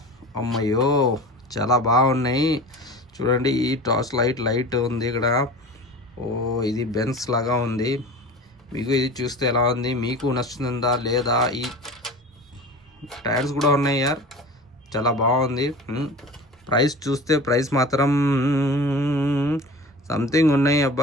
అమ్మయ్యో, చాలా బాగున్నాయి. చూడండి, ఈ టార్చ్ లైట్ ఉంది ఇక్కడ. ఓ, ఇది బెన్స్ లాగా ఉంది. మీకు ఇది చూస్తే ఎలా ఉంది, మీకు నచ్చుతుందా లేదా? ఈ టైర్స్ కూడా ఉన్నాయి యార్, చాలా బాగుంది. ప్రైస్ చూస్తే ప్రైస్ మాత్రం సంథింగ్ ఉన్నాయి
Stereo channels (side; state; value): both; normal; correlation 0.36